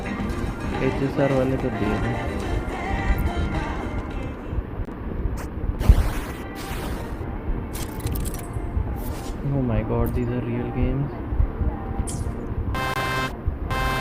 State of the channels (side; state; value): both; identical; correlation 1.00